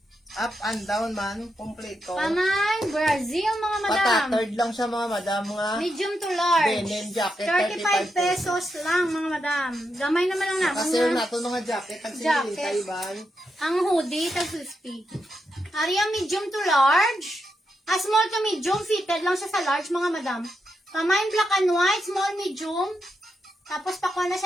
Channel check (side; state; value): both; normal; correlation 0.84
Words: up and down man. Kompleto. Pamay, Brazil mga madam. Patattered lang siya mga madam. Mga Medium to large. denim jacket. 35 pesos lang mga madam. Gamay naman lang na. Kasi na ito mga jacket. Ang Jacket. sinilita iban. Ang hoodie, tag 50. Ari ang medium to large. Small to medium, fitted lang siya sa large, mga madam. Pamain black and white, small, medium. Tapos pakuha na